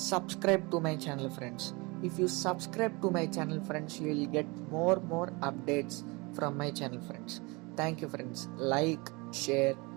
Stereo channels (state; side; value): quieter; left; 26.6 dB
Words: to my channel friends. If you subscribe to my channel friends, you will get more updates from my channel friends. Thank you friends. Like, share,